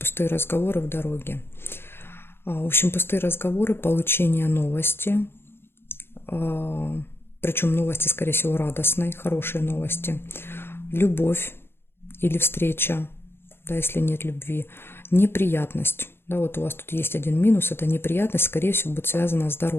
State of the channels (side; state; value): right; late; 0.11 ms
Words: разговоры в дороге. В общем, пустые разговоры, получение новости. Причем новости, скорее всего, радостные, хорошие новости. Любовь или встреча, да, если нет любви. Неприятность. Да, вот у вас тут есть один минус, это неприятность, скорее всего, будет связана с